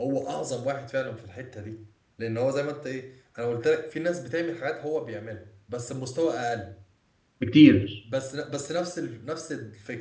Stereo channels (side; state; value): both; identical; correlation 1.00